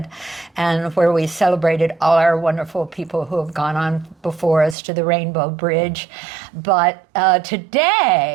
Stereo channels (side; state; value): left; drops out; at 4.8 s